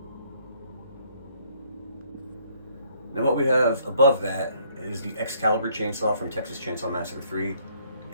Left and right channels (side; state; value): both; inverted; correlation -0.65